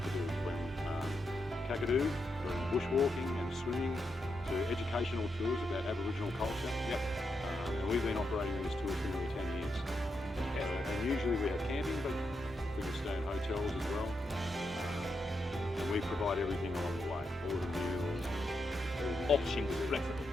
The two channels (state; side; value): normal; both; correlation 0.84